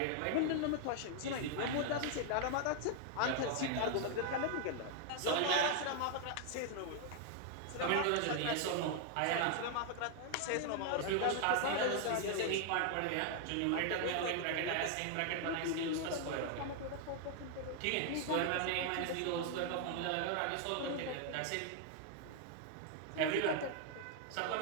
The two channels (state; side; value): different; both; correlation 0.00